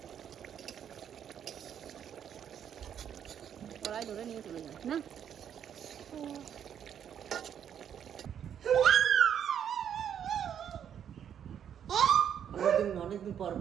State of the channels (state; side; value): quieter; left; 9.0 dB